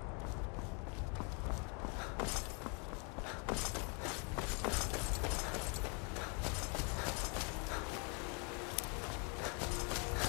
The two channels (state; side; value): quieter; right; 35.5 dB